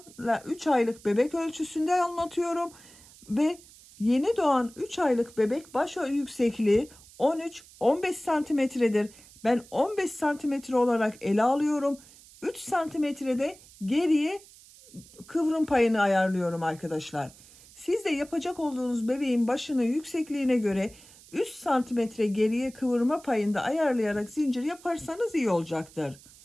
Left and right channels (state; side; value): noise; right; hiss, 23 dB below the sound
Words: 3 aylık bebek ölçüsünde anlatıyorum ve yeni doğan 3 aylık bebek baş yüksekliği 13-15 santimetredir. Ben 15 santimetre olarak ele alıyorum. 3 santimetrede geriye kıvrım payını ayarlıyorum arkadaşlar. Siz de yapacak olduğunuz bebeğin başını yüksekliğine göre 3 santimetre geriye kıvırma payında ayarlayarak zincir yaparsanız iyi olacaktır.